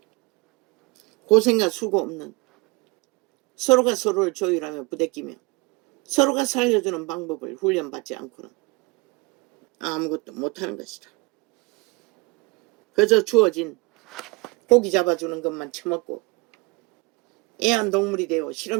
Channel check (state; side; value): quieter; left; 26.2 dB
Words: 고생과 수고 없는 서로가 서로를 조율하며 부대끼며 서로가 살려주는 방법을 훈련받지 않고는 아무것도 못하는 것이다. 그저 주어진 고기 잡아주는 것만 처먹고 애완동물이 되어